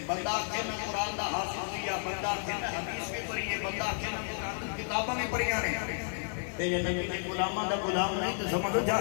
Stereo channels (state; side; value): silent; right; digital silence